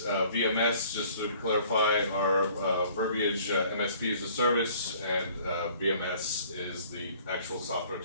Just to clarify our verbiage, MSP is the service and VMS is the actual software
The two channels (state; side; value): inverted; both; correlation -0.55